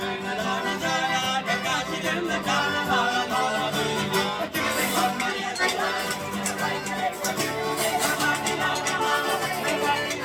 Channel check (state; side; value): identical; both; correlation 1.00